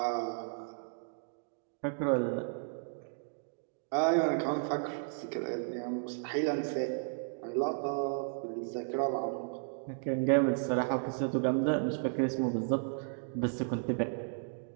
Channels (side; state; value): left; silent; digital silence